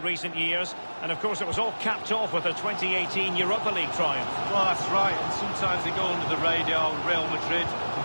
recent years. And, of course, it was all capped off with a 2018 Europa League triumph. Well, that's right. And sometimes they go under the radar. Real Madrid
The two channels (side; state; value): both; inverted; correlation -1.00